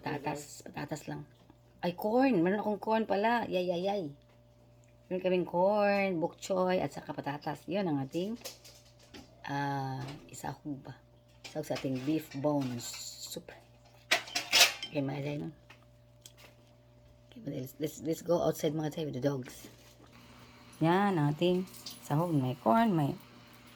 Patatas lang. Ay, corn. Meron akong corn pala. Yay. Meron kaming corn, bok choy, at saka patatas. Yun ang ating isahog ba? Isahog sa ating beef bones soup. Okay, mga Jay, no? Okay, let's go outside mga Jay with the dogs. Yan, ang ating sahog. May corn, may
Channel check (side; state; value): both; identical; correlation 1.00